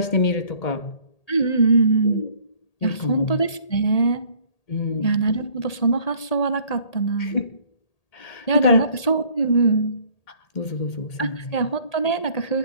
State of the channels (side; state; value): right; late; 1.8 ms